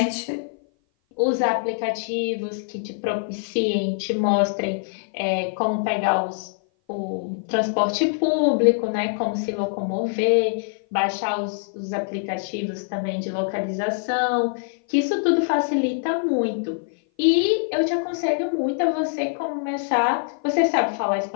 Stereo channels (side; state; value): right; silent; 57 dB below the other